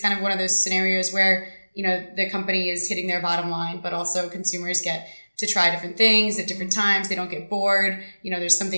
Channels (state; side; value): inverted; both; correlation -1.00